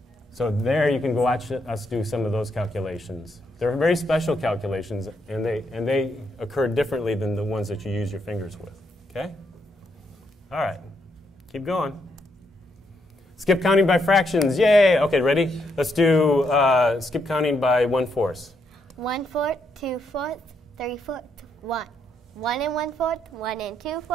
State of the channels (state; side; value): normal; both; correlation 0.77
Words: So there you can go watch us do some of those calculations. They're very special calculations, and they occur differently than the ones that you use your fingers with. Okay? All right. Keep going. Skip counting by fractions. Yay! Okay, ready? Let's do skip counting by 1/4. 1/4, 2/4, 3/4, 1. 1 and 1/4, 1 and